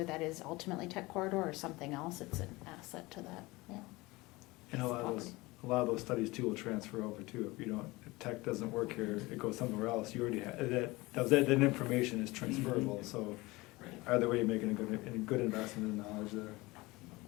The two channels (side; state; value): right; quieter; 21.9 dB